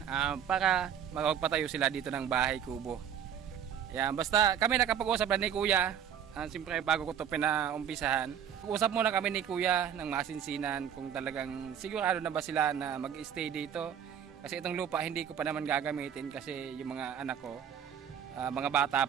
para magpatayo sila dito ng bahay kubo. Yan, basta kami nakapag-usap na ni Kuya. Siyempre bago ko ito pinaumpisahan. Usap muna kami ni Kuya ng masinsinan kung talagang sigurado na ba sila na mag-stay dito. Kasi itong lupa hindi ko pa naman gagamitin kasi yung mga anak ko, mga bata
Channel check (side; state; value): left; quieter; 8.9 dB